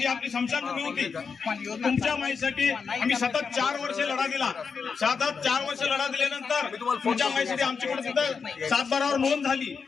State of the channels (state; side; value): quieter; right; 5.6 dB